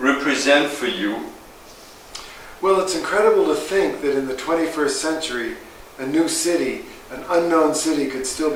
for you? Well, it's incredible to think that in the 21st century, a new city, an unknown city, could still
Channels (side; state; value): both; identical; correlation 1.00